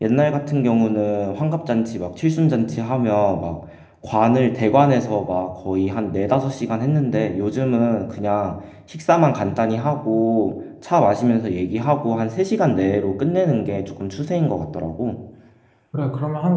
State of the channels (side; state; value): both; identical; correlation 1.00